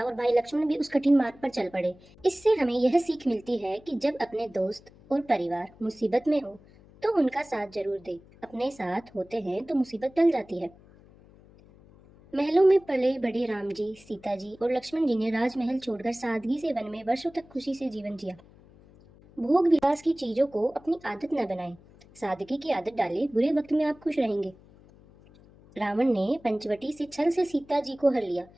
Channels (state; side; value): noise; left; hum, 25 dB below the sound